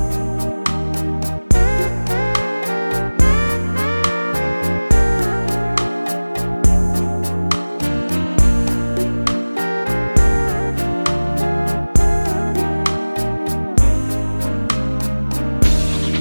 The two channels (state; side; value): inverted; both; correlation -1.00